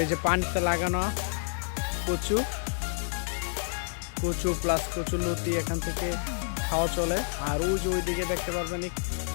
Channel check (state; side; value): silent; right; digital silence